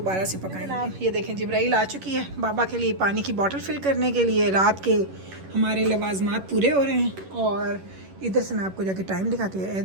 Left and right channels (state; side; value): late; left; 11 ms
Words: से पकाएंगे। आप ये देखें जिब्राइल आ चुकी है बाबा के लिए पानी की बोतल फिल करने के लिए। रात के हमारे लवाजमात पूरे हो रहे हैं। और इधर से मैं आपको जाके टाइम दिखाती हूँ,